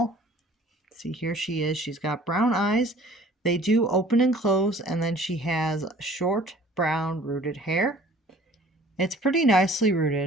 See, here she is. She's got brown eyes. They do open and close, and then she has short brown rooted hair. It's pretty nicely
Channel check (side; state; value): both; normal; correlation 0.51